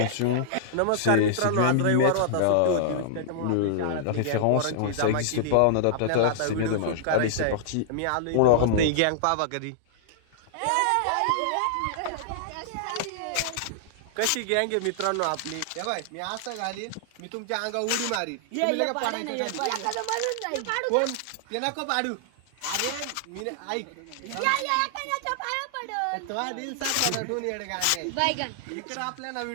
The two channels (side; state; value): both; different; correlation -0.01